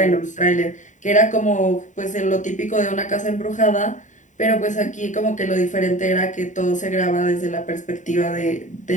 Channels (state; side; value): late; right; 0.36 ms